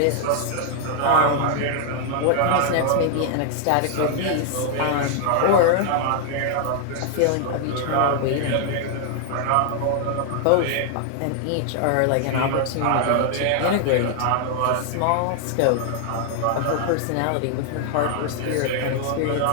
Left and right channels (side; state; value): both; different; correlation 0.00